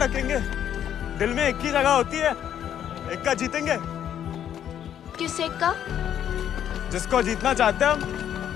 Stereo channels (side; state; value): right; quieter; 9.9 dB